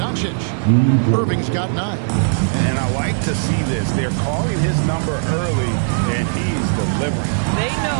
Irving's got 9. And I like to see this. They're calling his number early, and he's delivering. They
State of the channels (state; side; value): silent; left; 58 dB below the other